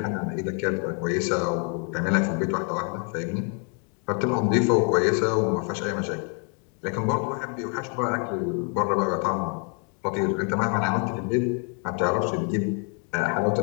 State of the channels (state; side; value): quieter; right; 39.8 dB